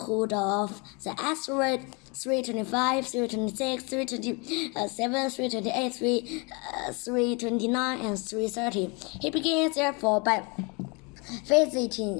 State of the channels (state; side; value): quieter; right; 31.1 dB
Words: of the asteroid 325, 326, 327, 328, 329, and 330. He began, therefore, by